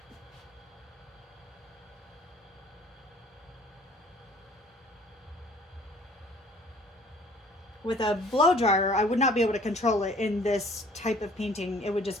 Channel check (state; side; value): normal; both; correlation 0.54